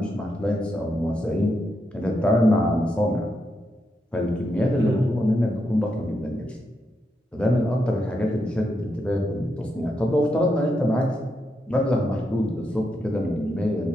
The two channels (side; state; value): both; normal; correlation 0.83